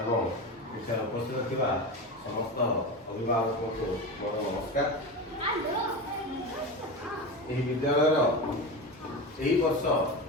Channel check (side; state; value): both; normal; correlation 0.24